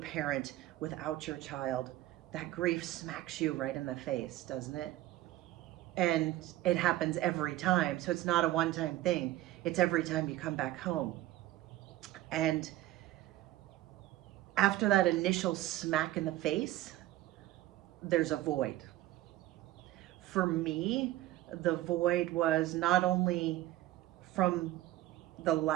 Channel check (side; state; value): left; quieter; 15.4 dB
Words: without your child, that grief smacks you right in the face, doesn't it? And it happens every time. So it's not a one-time thing. It's every time you come back home. And after that initial smack in the face, there's a void. For me, the void was not only from the